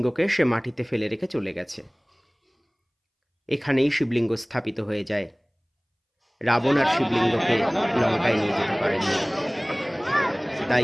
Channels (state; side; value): identical; both; correlation 1.00